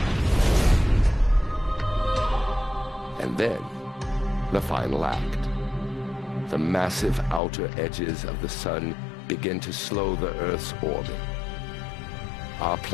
And then, the final act. The massive outer edges of the sun begin to slow the Earth's orbit. Our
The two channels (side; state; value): right; drops out; at 7.4 s